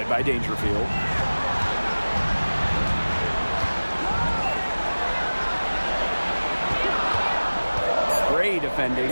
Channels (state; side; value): inverted; both; correlation -1.00